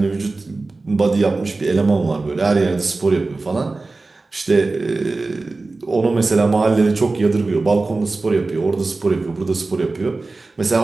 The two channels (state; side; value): quieter; left; 3.5 dB